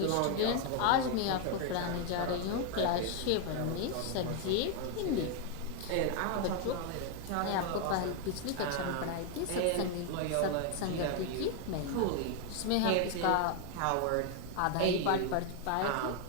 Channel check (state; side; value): different; both; correlation 0.01